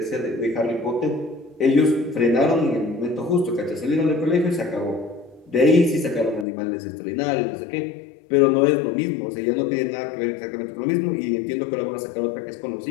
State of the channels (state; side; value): drops out; right; at 6.5 s